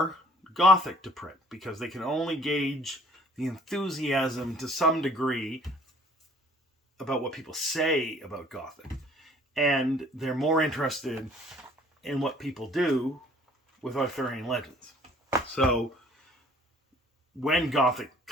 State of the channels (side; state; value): both; normal; correlation 0.55